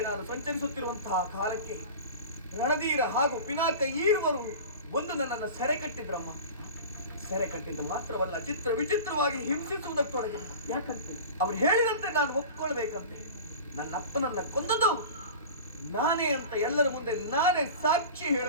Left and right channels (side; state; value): both; inverted; correlation -0.35